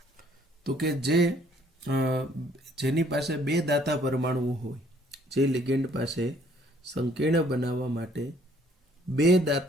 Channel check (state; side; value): normal; both; correlation 0.62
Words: તો કે જેની પાસે બે દાતા પરમાણુઓ હોય, જે લિગેન્ડ પાસે સંકીર્ણ બનાવવા માટે બે